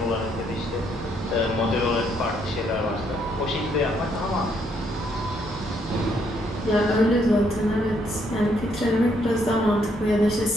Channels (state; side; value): normal; both; correlation 0.72